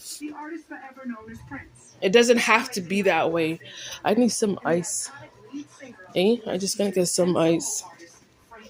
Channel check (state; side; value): identical; both; correlation 1.00